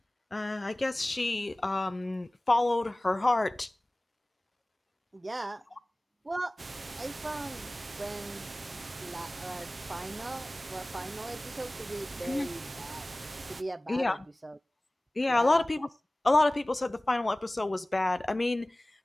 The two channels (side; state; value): both; normal; correlation 0.98